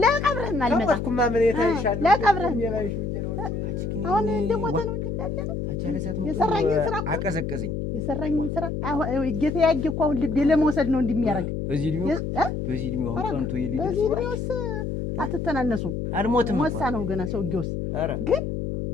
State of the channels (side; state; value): left; noise; hum, 3 dB below the sound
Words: ለቀብርህም አልመጣ ተቆጥኩማ ምን የታይሻል ለቀብርህም አሁን እንደሞተ ነው እንጂ እንዳለ ነው የሰራኝን ስራ አቀዘቀዘኝ። የሰራኝን ስራ አሁን ጌታ ያጌ እኮ አሁን ልቤ ለመውሰድ ነው እንደሚያደርግ። በዚህ እድሜው አሁን ቀንቶ የሊደርስ በዚህ እድሜውስ አትተናነሱም። አልሞትም ሞሳ ነው ገና ሰውዬውስ። ግን